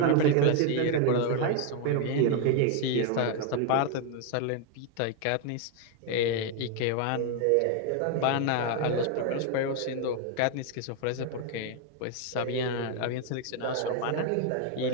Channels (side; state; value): both; different; correlation 0.01